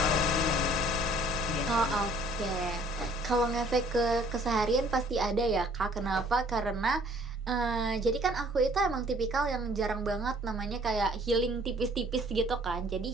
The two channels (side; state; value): both; normal; correlation 0.57